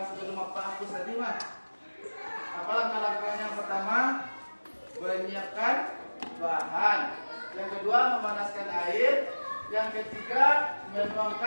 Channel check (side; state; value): both; inverted; correlation -1.00